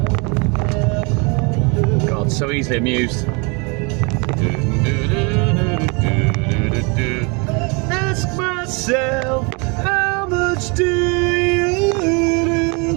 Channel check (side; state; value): left; quieter; 31.3 dB